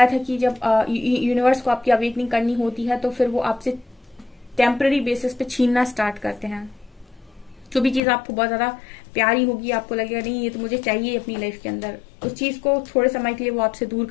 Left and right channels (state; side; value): drops out; right; at 8.0 s